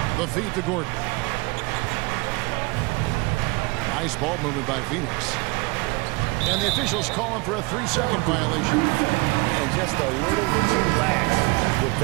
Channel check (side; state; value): left; quieter; 25.9 dB